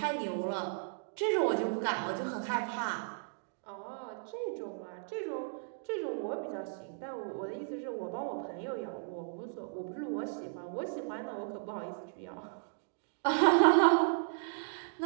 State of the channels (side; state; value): left; silent; digital silence